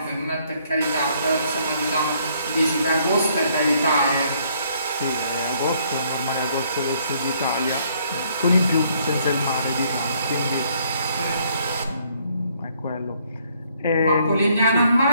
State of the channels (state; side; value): inverted; both; correlation -0.66